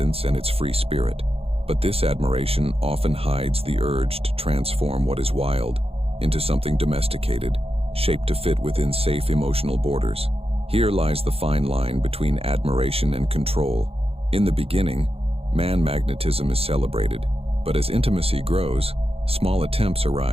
and its free spirit. But this admiration often hides the urge to transform what is wild into something domesticated, shaped to fit within safe emotional borders. Here lies the fine line between admiration and control. In the beginning, man magnetism is celebrated, but as intimacy grows, small attempts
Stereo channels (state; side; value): late; left; 0.28 ms